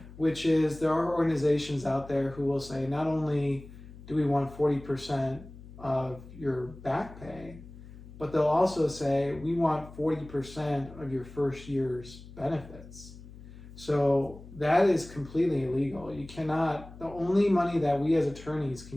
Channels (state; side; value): noise; left; hum, 17 dB below the sound